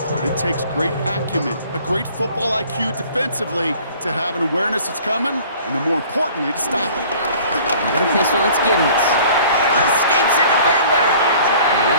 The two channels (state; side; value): inverted; both; correlation -0.50